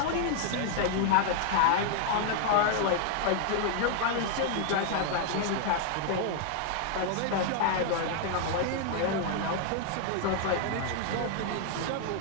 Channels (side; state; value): both; different; correlation 0.00